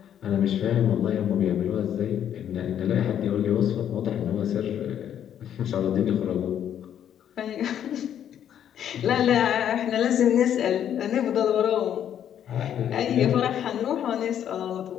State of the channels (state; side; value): quieter; right; 9.8 dB